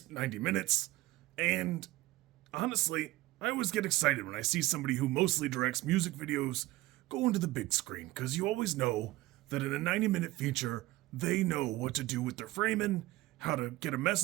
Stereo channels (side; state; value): left; quieter; 18.2 dB